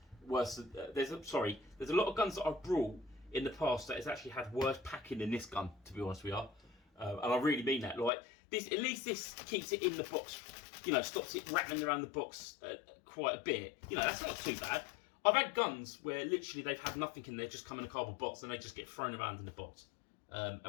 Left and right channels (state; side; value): drops out; right; at 8.1 s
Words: worse. There's a lot of guns that I've brought in the past that has actually had worse packing than this gun, to be honest with you. And I really mean that. Like this, at least this keeps it in the box. You know, stops it rattling around the box quite a bit. You know, that's not too bad. I've had guns where literally they've had nothing in there, just come in a cardboard box, and they just get thrown around in the box.